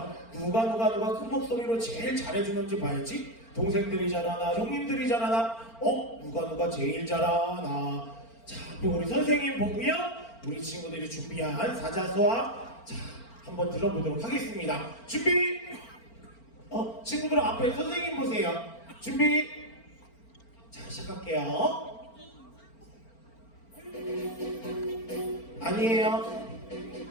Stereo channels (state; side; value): late; right; 4.4 ms